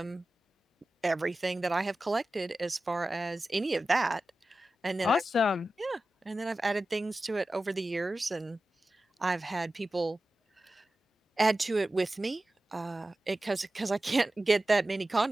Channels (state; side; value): normal; both; correlation 0.94